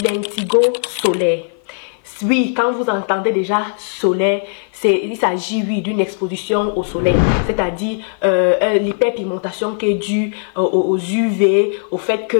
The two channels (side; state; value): right; silent; 56 dB below the other